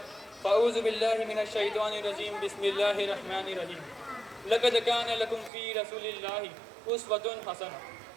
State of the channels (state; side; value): drops out; left; at 5.5 s